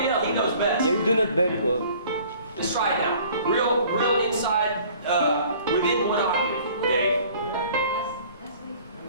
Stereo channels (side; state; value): both; inverted; correlation -0.52